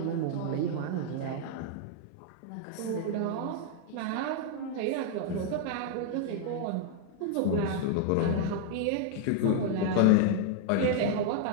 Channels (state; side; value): different; both; correlation 0.00